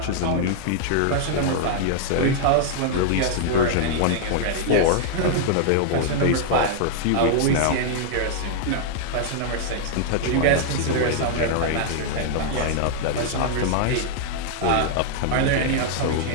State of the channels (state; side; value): different; both; correlation -0.01